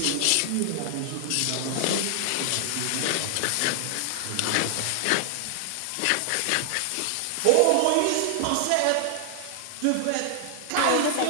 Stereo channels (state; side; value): different; both; correlation 0.00